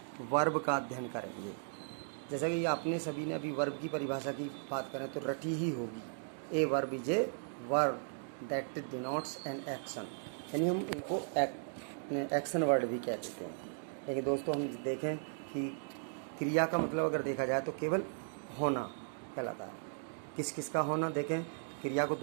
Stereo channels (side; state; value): left; silent; digital silence